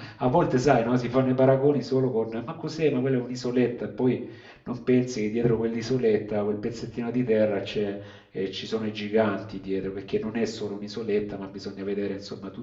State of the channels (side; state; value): both; identical; correlation 1.00